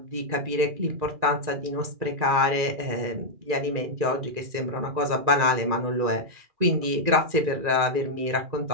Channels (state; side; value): late; left; 2.4 ms